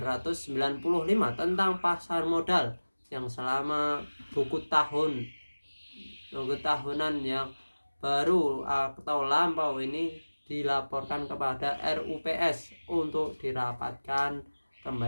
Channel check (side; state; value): both; inverted; correlation -1.00